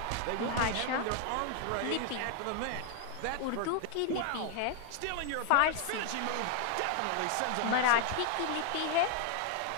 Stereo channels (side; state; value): both; different; correlation 0.00